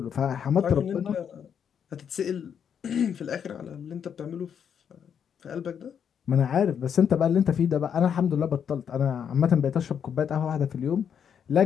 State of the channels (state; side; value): quieter; right; 7.9 dB